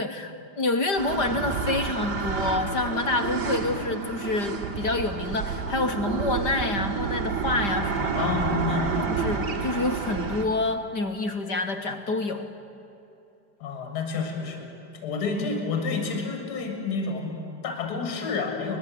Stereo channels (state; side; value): late; right; 5.0 ms